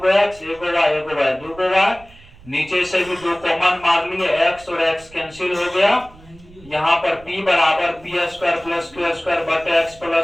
एक्स, एगो वाई दो गो वाई, नीचे से भी दो कॉमन मार लिए, एक्स और एक्स कैंसिल हो गया। यहाँ पर p बराबर P square plus Q square बटे एक्स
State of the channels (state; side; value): noise; right; rumble, 23 dB below the sound